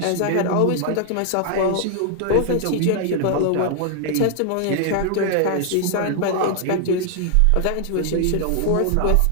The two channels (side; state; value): both; different; correlation 0.00